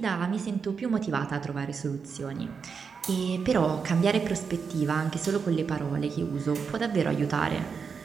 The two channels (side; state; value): left; quieter; 5.8 dB